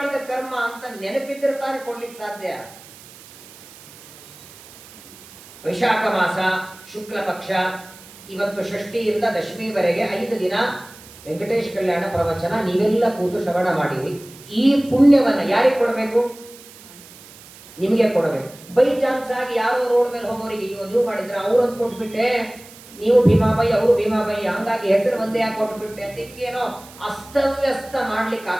ಕರ್ಮ ಅಂತ ನೆನಪಿದ್ರೆ ತಾನೇ ಕೊಡ್ಲಿಕ್ಕೆ ಸಾಧ್ಯ. ವೈಶಾಖ ಮಾಸ ಶುಕ್ಲ ಪಕ್ಷ, ಇವತ್ತು ಷಷ್ಠಿಯಿಂದ ದಶಮಿವರೆಗೆ 5 ದಿನ ವೆಂಕಟೇಶ್ ಕಲ್ಯಾಣ ಪ್ರವಚನ ನೀವೆಲ್ಲ ಕೂತು ಶ್ರವಣ ಮಾಡಿರಿ. ಈ ಪುಣ್ಯವನ್ನ ಯಾರಿಗೆ ಕೊಡಬೇಕು? ನಿಮಗೆ ಕೊಡಬೇಕು. ಬೈ ಚಾನ್ಸ್ ಆಗಿ ಯಾರೋ ರೋಡ್ ಮೇಲೆ ಹೋಗೋರಿಗೆ ನೀವು ಮಾಡಿದ್ರೆ ಅವ್ರನ್ನ ಕೊಟ್ಬಿಟ್ಟೆ, ನೀವು ಭೀಮಾಬಾಯಿ ಅವರು ಭೀಮಾಬಾಯಿ, ಹಂಗಾಗಿ ಹೆಸರು ಒಂದೇ ಯಾಕೆ ಕೊಟ್ಬಿಟ್ಟೆ ಅಂತ ಹಿಂಗೇನೋ ಅಸ್ತವ್ಯಸ್ತ ಮಾಡ್ಲಿಕ್ಕೆ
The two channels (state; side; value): noise; right; hiss, 20 dB below the sound